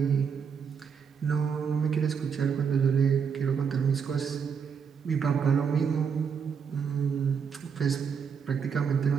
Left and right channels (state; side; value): quieter; left; 6.6 dB